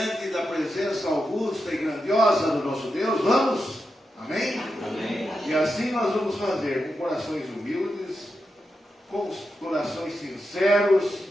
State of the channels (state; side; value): normal; both; correlation 0.88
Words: da presença augusta e grandiosa do nosso Deus. Vamos? Amém? Amém. E assim nós vamos fazer, com corações humildes, com corações sinceros.